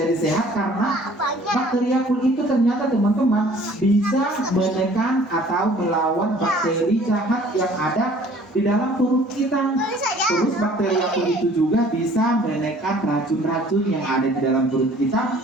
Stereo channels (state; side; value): normal; both; correlation 0.53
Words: sehat? Karena bakteri Yakult itu ternyata teman-teman bisa menekan atau melawan bakteri jahat yang ada di dalam perut kita. Terus bakteri Yakult itu juga bisa menekan racun-racun yang ada di dalam perut kita.